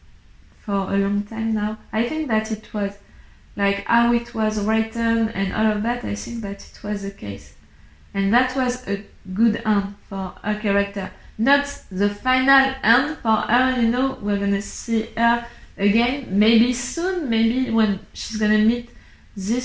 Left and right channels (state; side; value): identical; both; correlation 1.00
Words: for a long time now. I think that it was, like how it was written and all of that, I think that it was the case. And that was a good end for her character. Not the final end for her, we're gonna see her again, maybe soon, maybe when she's gonna meet